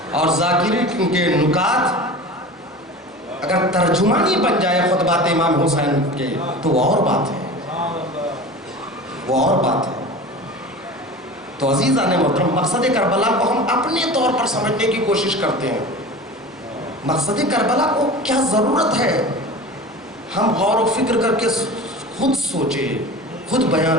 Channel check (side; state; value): both; normal; correlation 0.35